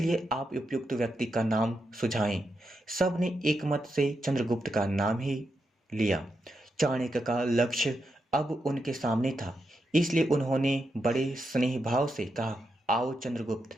आप उपयुक्त व्यक्ति का नाम सुझाएं। सब ने एक मत से चंद्रगुप्त का नाम ही लिया। चाणक्य का लक्ष्य अब उनके सामने था, इसलिए उन्होंने बड़े स्नेह भाव से कहा, आओ चंद्रगुप्त,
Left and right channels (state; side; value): normal; both; correlation 0.85